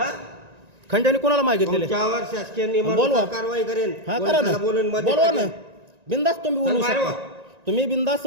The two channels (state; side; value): late; left; 1.9 ms